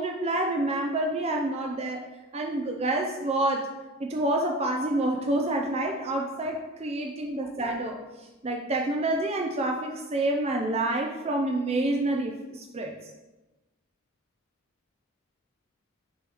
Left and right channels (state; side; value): normal; both; correlation 0.37